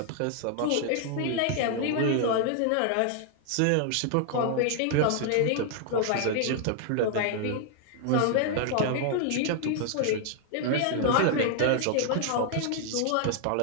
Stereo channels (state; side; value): different; both; correlation 0.00